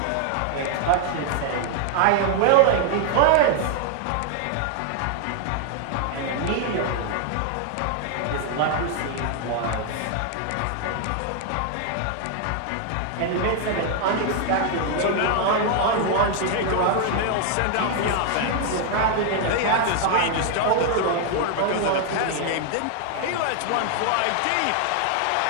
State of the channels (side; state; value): both; different; correlation 0.00